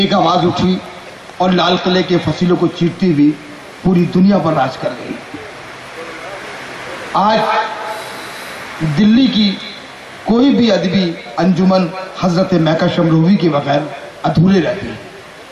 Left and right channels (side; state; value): both; identical; correlation 1.00